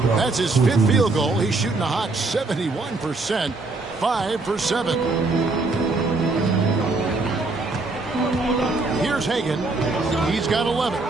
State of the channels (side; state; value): left; quieter; 3.4 dB